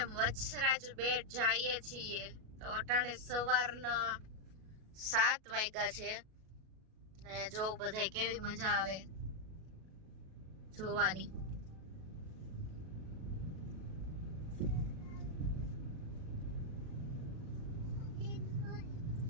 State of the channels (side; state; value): left; late; 37 ms